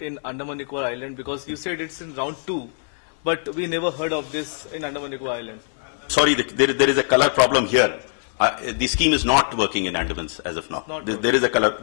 in Andaman Nicobar Island? Because you said it's in round 2, but we never heard of this in Andaman Nicobar Island. Sorry, there is a color problem here. The scheme is not working in Andamans as of now. There is a color,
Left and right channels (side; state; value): right; silent; 64 dB below the other